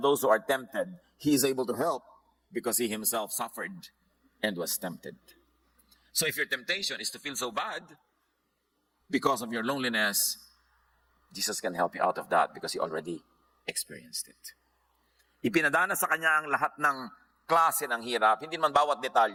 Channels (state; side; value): identical; both; correlation 1.00